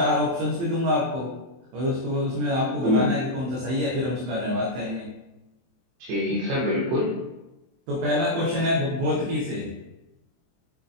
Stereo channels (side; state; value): left; late; 23 ms